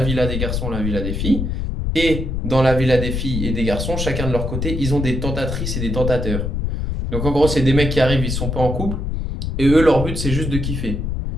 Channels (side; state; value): left; noise; rumble, 2 dB below the sound